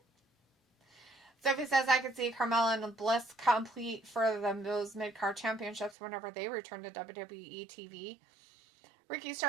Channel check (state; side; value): drops out; left; at 6.0 s